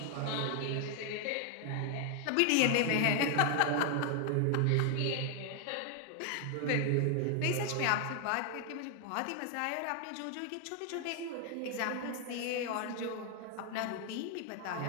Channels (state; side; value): different; both; correlation 0.00